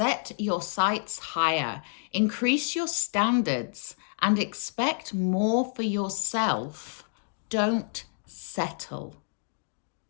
your sights higher. Increase your standards and expect more for yourself. Don't settle.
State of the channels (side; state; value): right; silent; digital silence